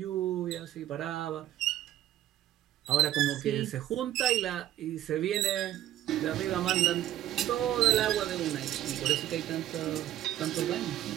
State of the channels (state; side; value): quieter; left; 13.0 dB